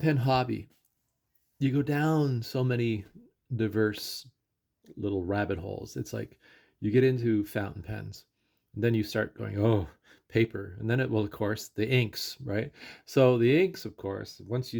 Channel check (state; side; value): identical; both; correlation 1.00